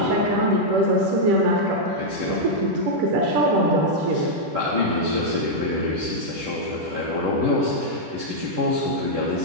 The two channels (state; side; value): late; left; 10 ms